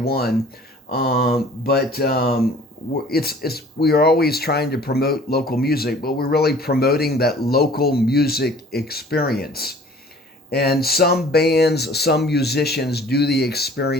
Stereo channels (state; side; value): normal; both; correlation 0.50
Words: We are always trying to promote local music, but we're really promoting that local music experience. And some bands, some musicians do the